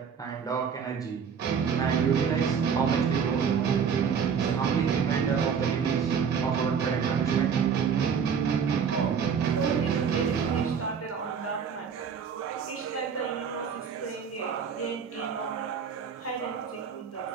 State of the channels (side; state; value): left; quieter; 6.8 dB